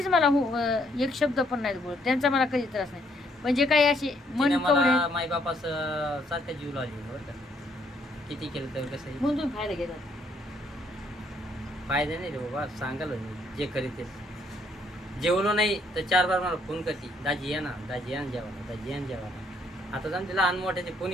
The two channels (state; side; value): normal; both; correlation 0.69